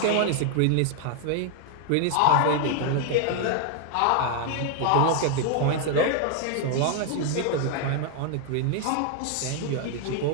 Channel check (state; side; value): different; both; correlation 0.00